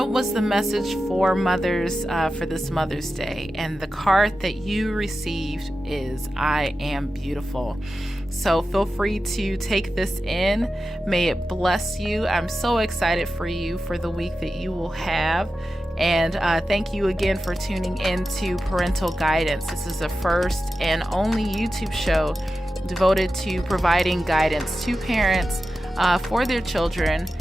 was the message for mothers for this Mother's Day? And the card that you received is, I am beautiful. So feel free to take this in. May it bless you. I'm so excited for you for the week that you will have. And thank you again for tuning in to Parental Guidance. This is the first and only YouTube show devoted to providing guidance to parents for their children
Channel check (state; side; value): normal; both; correlation 0.92